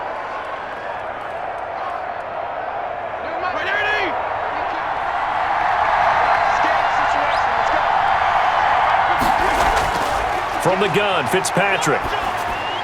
From the gun, Fitzpatrick.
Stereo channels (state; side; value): identical; both; correlation 1.00